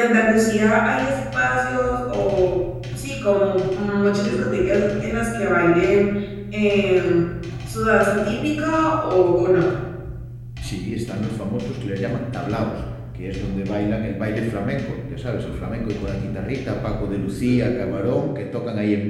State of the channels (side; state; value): both; identical; correlation 1.00